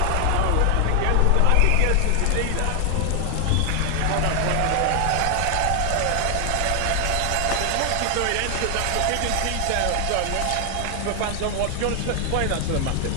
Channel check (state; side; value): different; both; correlation 0.00